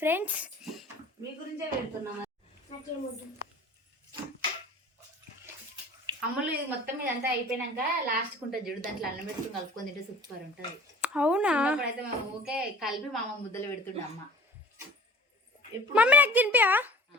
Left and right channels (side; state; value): both; normal; correlation 0.45